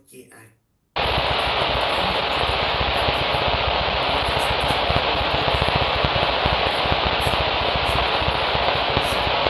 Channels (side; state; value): both; identical; correlation 1.00